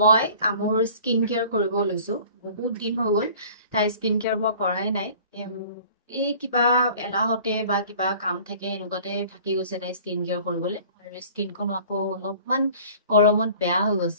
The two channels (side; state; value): both; inverted; correlation -0.48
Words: মই মোৰ স্কিন কেয়াৰ কৰিব লৈছো। বহুত দিন হৈ গ'ল তাই স্কিন কেয়াৰ মই কৰাই নাই। এই কিবা এলাহতে বা কিবা কাম থাকে এনেকুৱাতে থাকি গৈছে তাই স্কিন কেয়াৰ কৰিবলৈ, আৰু স্কিনখন আকৌ অলপমান গৰমত বেয়া হৈ